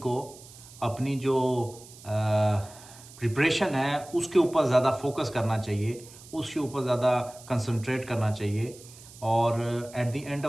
अपनी जो प्रिपरेशन है उसके ऊपर ज़्यादा फोकस करना चाहिए, उसके ऊपर ज़्यादा कंसंट्रेट करना चाहिए। और at the end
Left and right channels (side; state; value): right; noise; hiss, 20 dB below the sound